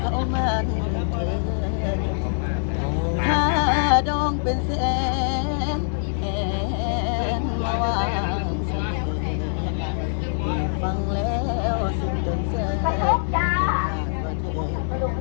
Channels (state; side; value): silent; right; 62 dB below the other